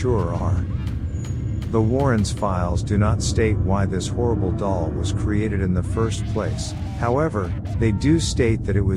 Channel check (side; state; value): both; identical; correlation 1.00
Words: are. The Warrens' files do not state why this horrible doll was created in the first place. However, they do state that it